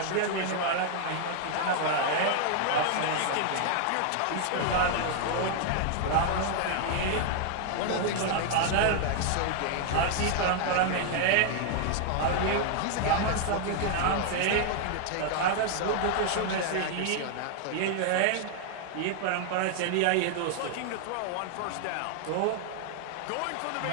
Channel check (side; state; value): both; different; correlation 0.00